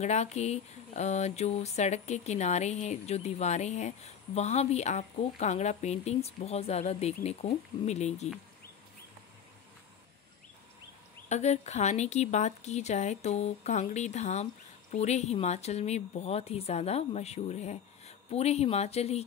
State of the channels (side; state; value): right; quieter; 7.9 dB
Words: के जो सड़क के किनारे हैं, जो दीवारें हैं, वहाँ भी आपको कांगड़ा पेंटिंग्स बहुत ज़्यादा देखने को मिलेगी। अगर खाने की बात की जाए तो कांगड़ी धाम पूरे हिमाचल में बहुत ही ज़्यादा मशहूर है। पूरे हिमाचल ही